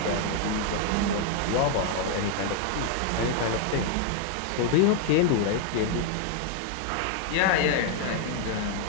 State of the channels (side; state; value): both; different; correlation 0.00